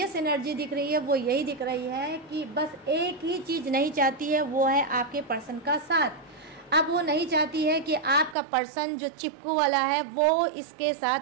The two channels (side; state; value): left; drops out; at 8.3 s